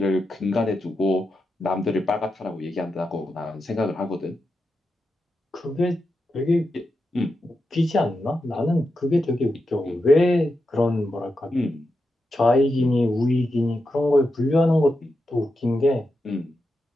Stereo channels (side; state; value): both; normal; correlation 0.88